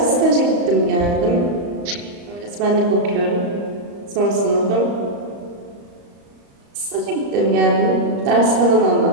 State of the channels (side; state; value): left; late; 35 ms